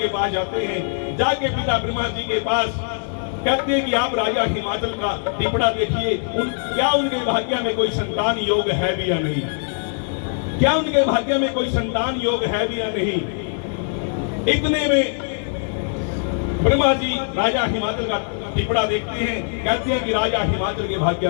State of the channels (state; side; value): silent; right; 64 dB below the other